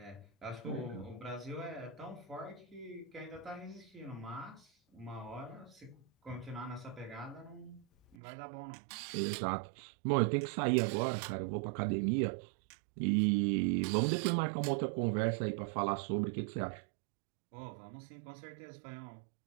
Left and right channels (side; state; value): left; drops out; at 8.2 s